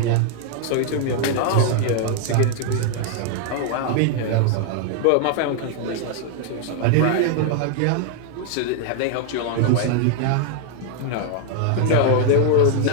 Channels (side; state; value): both; different; correlation 0.00